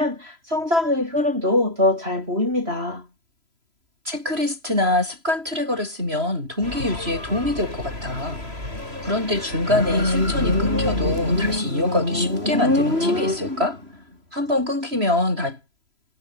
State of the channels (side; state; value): left; late; 3.0 ms